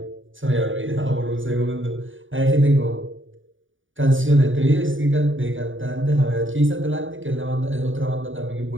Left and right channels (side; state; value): left; late; 0.57 ms